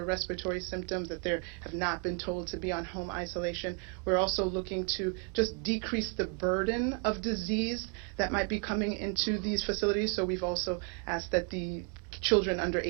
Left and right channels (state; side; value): quieter; left; 35.8 dB